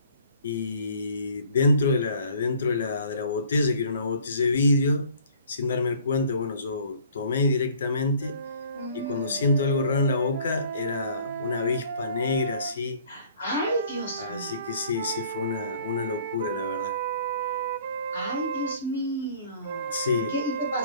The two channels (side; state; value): both; inverted; correlation -0.54